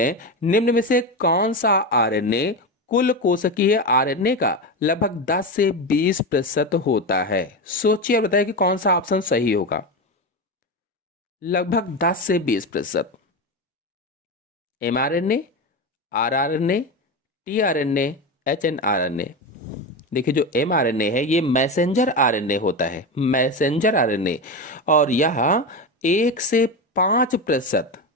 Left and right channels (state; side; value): normal; both; correlation 0.18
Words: निम्न में से कौन सा आरएनए कुल कोशिकीय आरएनए का लगभग 10 से 20% होता है? सोचिए और बताइए कि कौन सा ऑप्शन सही होगा। लगभग 10 से 20%। mRNA, rRNA, tRNA, hnRNA। देखिए जो mRNA है ये मैसेंजर आरएनए होता है, मैसेंजर आरएनए, और यह 1 से 5%